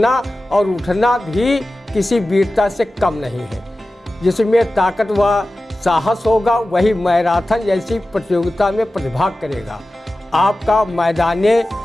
और उठना भी किसी वीरता से कम नहीं है। जिसमें ताकत व साहस होगा वही मैराथन जैसी प्रतियोगिता में प्रतिभाग करेगा। आपका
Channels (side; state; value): both; normal; correlation 0.95